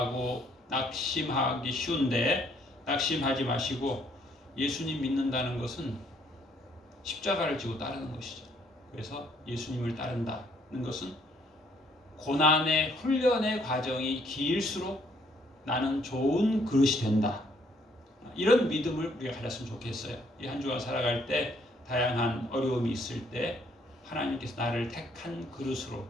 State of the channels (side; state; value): both; normal; correlation 0.67